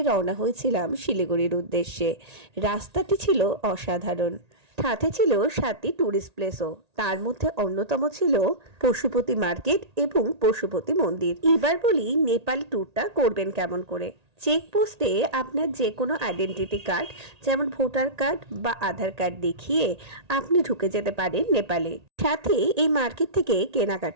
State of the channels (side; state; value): left; late; 1.8 ms